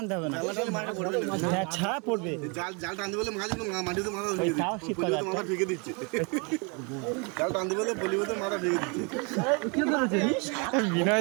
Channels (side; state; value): left; quieter; 33.1 dB